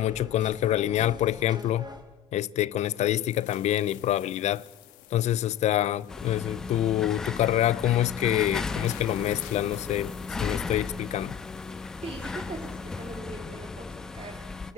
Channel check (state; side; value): quieter; right; 10.6 dB